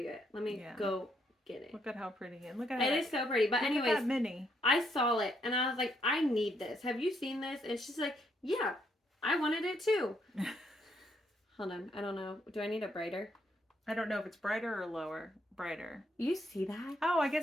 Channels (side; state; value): both; normal; correlation 0.74